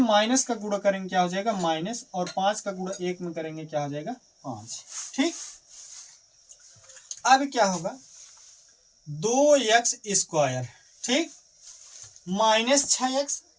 का गुणा करेंगे क्या हो जाएगा माइनस, और 5 का गुणा 1 में करेंगे क्या हो जाएगा 5। ठीक, अब क्या होगा 2x स्क्वायर, ठीक, माइनस 6x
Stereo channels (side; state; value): both; identical; correlation 1.00